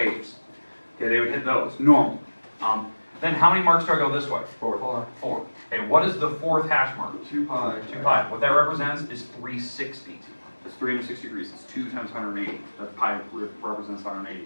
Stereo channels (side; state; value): both; inverted; correlation -1.00